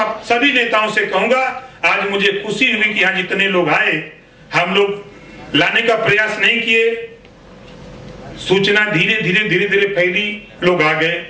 सभी नेताओं से कहूंगा, आज मुझे खुशी हुई कि यहाँ जितने लोग आए, हम लोग लाने का प्रयास नहीं किए, सूचना धीरे धीरे फैली, लोग आ गए।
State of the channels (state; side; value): identical; both; correlation 1.00